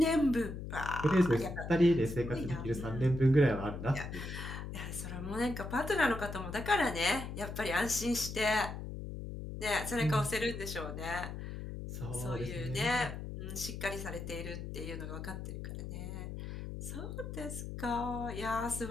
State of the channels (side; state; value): left; noise; hum, 7 dB below the sound